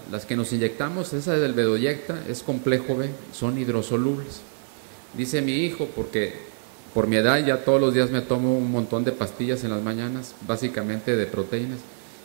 que nos inyectamos, esa del dedoyecta, es complejo B, son hidrosolubles. Dice mi hijo, porque por mi edad ya todos los días me tomo un montón de pastillas en las mañanas, básicamente de proteínas,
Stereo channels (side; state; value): left; silent; digital silence